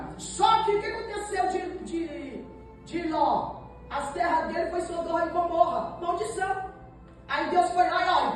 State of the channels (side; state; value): both; identical; correlation 1.00